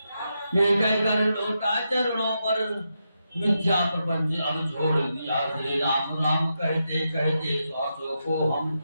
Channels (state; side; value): inverted; both; correlation -0.85